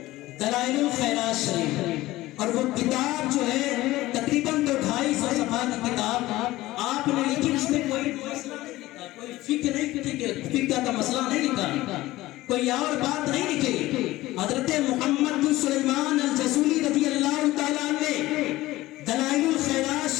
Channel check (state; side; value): quieter; right; 17.5 dB